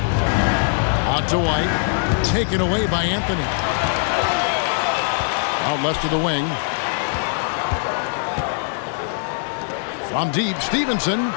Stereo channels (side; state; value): right; silent; digital silence